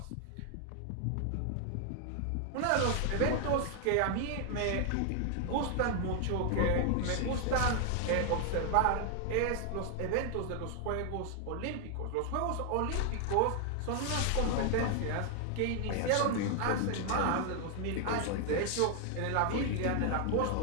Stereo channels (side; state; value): both; different; correlation 0.00